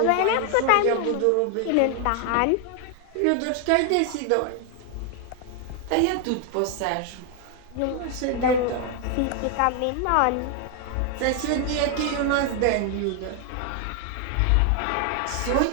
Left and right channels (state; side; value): different; both; correlation 0.00